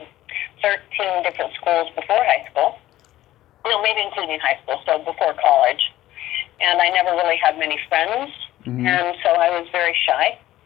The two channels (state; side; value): quieter; right; 14.8 dB